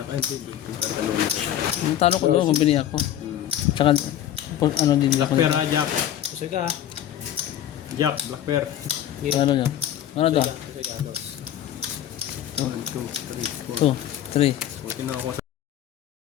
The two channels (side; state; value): right; quieter; 11.3 dB